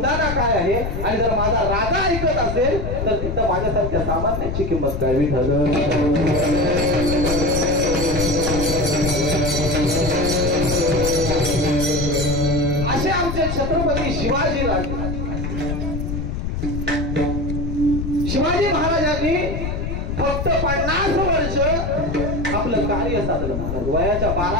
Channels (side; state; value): left; noise; rumble, 3 dB below the sound